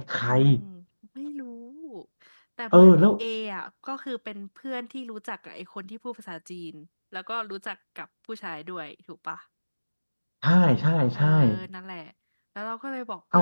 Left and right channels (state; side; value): inverted; both; correlation -1.00